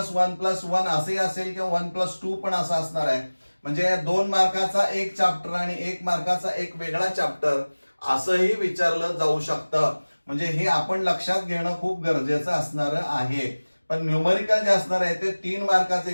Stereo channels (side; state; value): both; inverted; correlation -1.00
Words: असे असेल किंवा 1+2 पण असं असणार आहे. म्हणजे 2 मार्काचा एक चॅप्टर आणि 1 मार्काचा एक वेगळा चॅप्टर असंही विचारलं जाऊ शकतं. म्हणजे हे आपण लक्षात घेणं खूप गरजेचं असणार आहे. पण न्यूमरिकल जे असणार आहे ते 3 मार्काचं